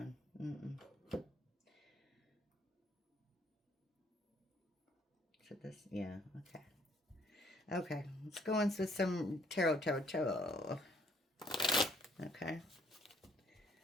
So this, yeah, okay, let's go into some tarot. Okay,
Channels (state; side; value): normal; both; correlation 0.64